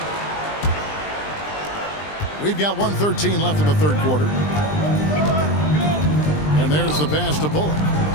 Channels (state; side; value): late; right; 20 ms